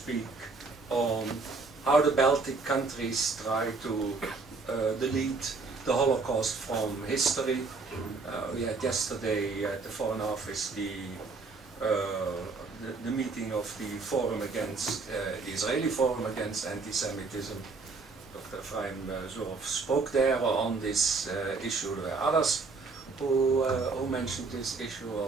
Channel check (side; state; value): left; quieter; 4.2 dB